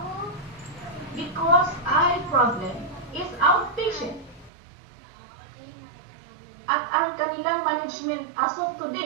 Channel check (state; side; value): drops out; left; at 4.5 s